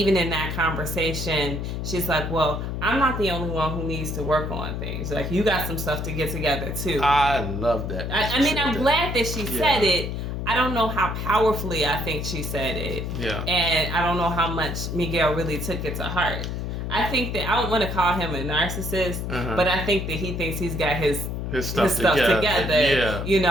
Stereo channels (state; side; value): noise; left; hum, 4 dB below the sound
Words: in that conversation, she's like, well, I'm not the only one who needs to work on things. Like, you got some stuff to get together too. I love that. I'm glad that she said it. I don't know how powerfully I think she said it. Yeah. And I don't know how much Miguel really took it to heart. I think that, I don't want to call him a narcissist, but I think that he thinks he's got his stuff together.